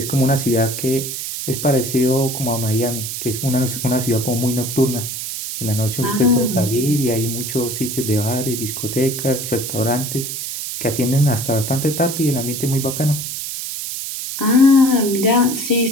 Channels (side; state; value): right; noise; hiss, 5 dB below the sound